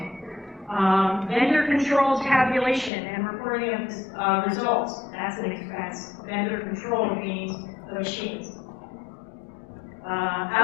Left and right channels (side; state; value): right; drops out; at 2.9 s